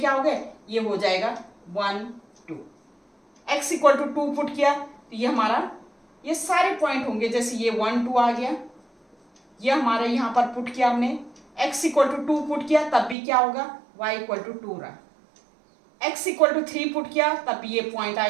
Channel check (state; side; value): drops out; left; at 13.2 s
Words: हो गए, ये हो जाएगा 1 2। x इक्वल टू 2 पुट किया, तो ये हमारा, ये सारे पॉइंट होंगे, जैसे ये 1 2 आ गया, ये हमारा यहाँ पर पुट किया हमने, x इक्वल टू 2 पुट किया, तब भी क्या होगा, y इक्वल टू 2 रहा। x इक्वल टू 3 पुट किया, तब भी ये पॉइंट आ